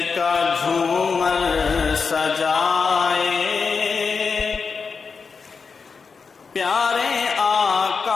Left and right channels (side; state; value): right; quieter; 5.2 dB